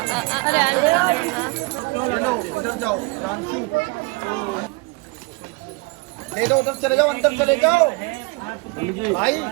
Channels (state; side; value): quieter; left; 26.5 dB